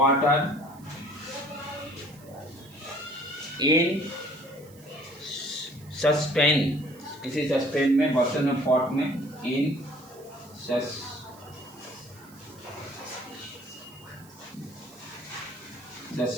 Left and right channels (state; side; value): noise; right; hiss, 24 dB below the sound